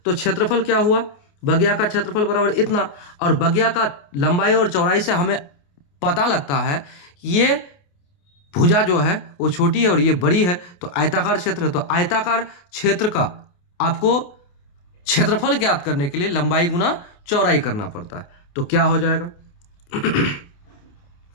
तो क्षेत्रफल क्या हुआ, बगिया का क्षेत्रफल बराबर इतना, और बगिया का लंबाई और चौड़ाई से हमें पता लगता है ये भुजा जो है वो छोटी है और ये बड़ी है, तो आयताकार क्षेत्र है। तो आयताकार क्षेत्र का आपको क्षेत्रफल ज्ञात करने के लिए लंबाई गुना चौड़ाई करना पड़ता है। तो क्या हो जाएगा,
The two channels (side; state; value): right; late; 28 ms